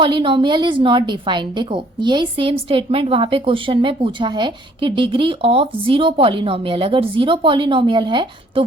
is not defined. देखो यही सेम स्टेटमेंट वहां पे क्वेश्चन में पूछा है कि डिग्री ऑफ 0 पॉलिनोमियल, अगर 0 पॉलिनोमियल है तो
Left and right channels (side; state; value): both; normal; correlation 0.61